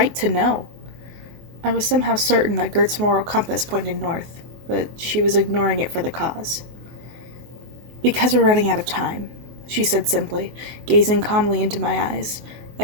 to know. I was somehow certain that Gert's moral compass pointed north, but she was ignoring it for the cause. Because we're running out of time, she said simply, gazing calmly into my eyes.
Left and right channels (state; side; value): late; left; 23 ms